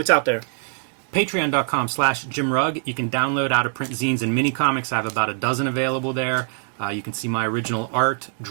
out there? Patreon.com/JimRugg. You can download out-of-print zines and mini comics. I have about a dozen available there. You can see my original art,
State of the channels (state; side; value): silent; left; 63 dB below the other